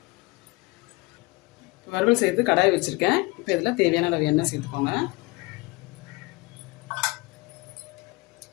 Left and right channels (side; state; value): right; quieter; 25.0 dB